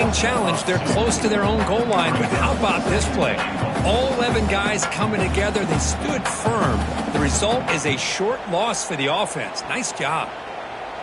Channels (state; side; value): identical; both; correlation 1.00